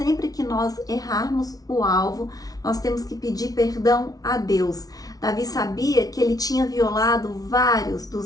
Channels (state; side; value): late; right; 0.18 ms